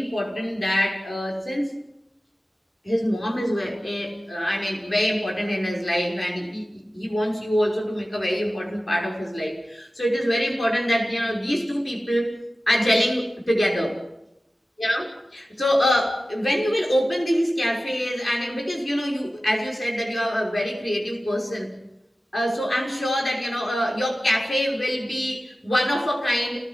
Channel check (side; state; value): both; normal; correlation 0.96